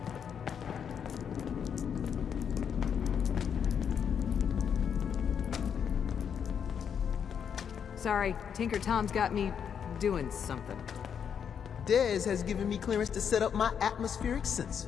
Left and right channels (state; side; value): quieter; right; 7.6 dB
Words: Sorry, Tinker Tom's got me doing something. Dez has given me clearance to set up my atmospheric sensors.